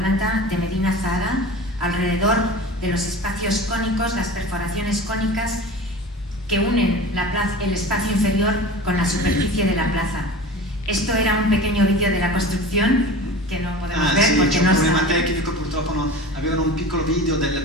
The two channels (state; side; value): normal; both; correlation 0.35